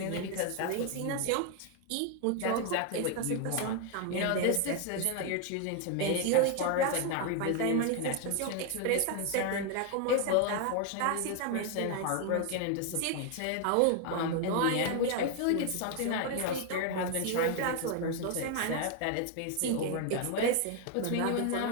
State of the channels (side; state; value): both; different; correlation 0.01